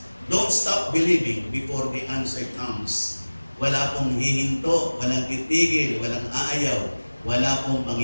Don't stop believing before the answer comes. Wala pong hihinto, walang titigil, walang aayaw, wala pong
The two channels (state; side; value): inverted; both; correlation -1.00